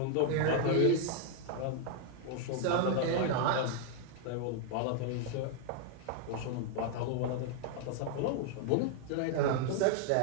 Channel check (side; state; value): both; different; correlation 0.00